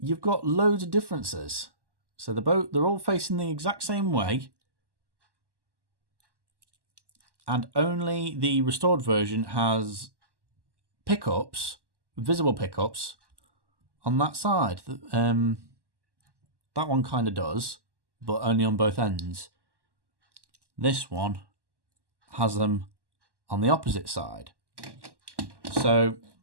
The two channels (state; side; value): late; left; 1.1 ms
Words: got loads of differences. So they're all facing the exact same way, and only the restored version has pickups, visible pickups, on that side. That one kind of does, but only on both ends. This one has them on the opposite side. So